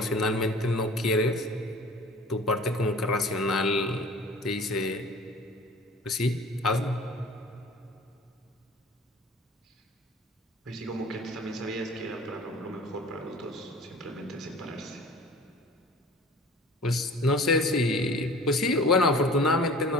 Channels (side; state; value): both; normal; correlation 0.44